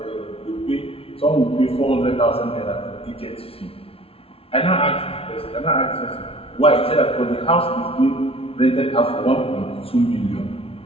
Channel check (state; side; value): late; right; 0.27 ms